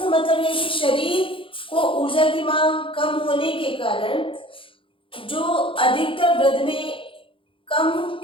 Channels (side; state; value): right; late; 0.25 ms